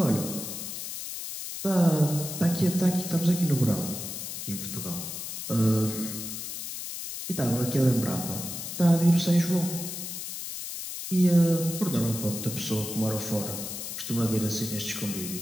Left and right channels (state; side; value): noise; left; hiss, 7 dB below the sound